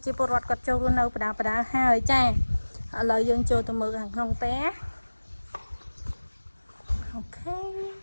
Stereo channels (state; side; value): inverted; both; correlation -1.00